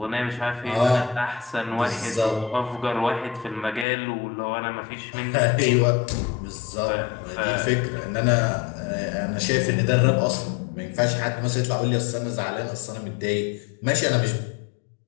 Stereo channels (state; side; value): drops out; right; at 3.9 s